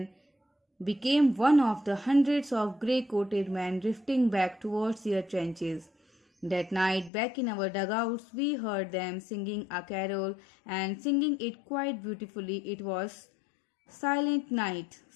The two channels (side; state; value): right; drops out; at 7.1 s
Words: became one of the hundreds of grey-coated men drifting back towards their trenches. That night, back in our dugouts, we heard them singing a carol and singing it quite beautifully. It was Silent Night.